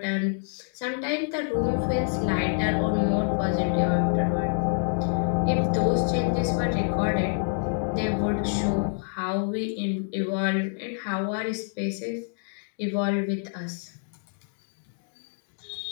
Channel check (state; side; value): silent; right; digital silence